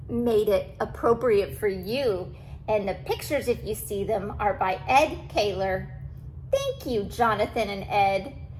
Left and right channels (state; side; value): identical; both; correlation 1.00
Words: made it appropriate for you. And the pictures, if you see them, are by Ed Kaler. Thank you, Jonathan and Ed.